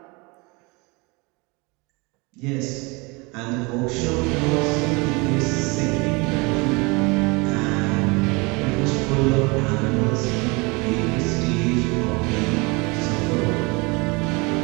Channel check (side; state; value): left; quieter; 27.2 dB